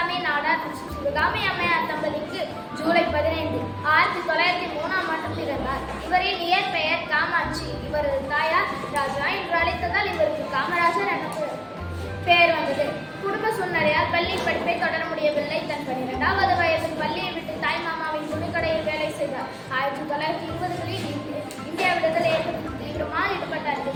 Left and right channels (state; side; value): identical; both; correlation 1.00